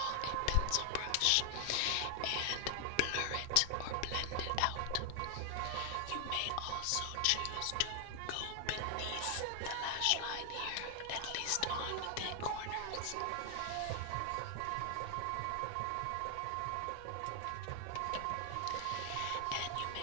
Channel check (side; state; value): both; different; correlation 0.00